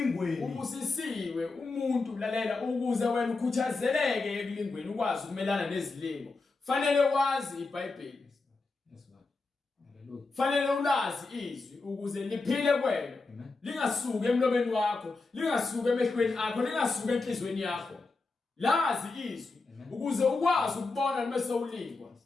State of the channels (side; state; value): right; quieter; 3.7 dB